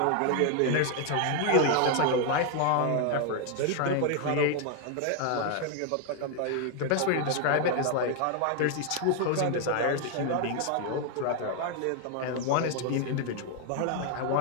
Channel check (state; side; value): different; both; correlation 0.00